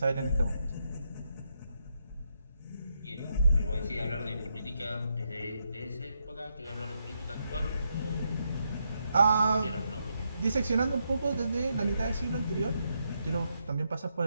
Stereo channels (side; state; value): both; inverted; correlation -0.81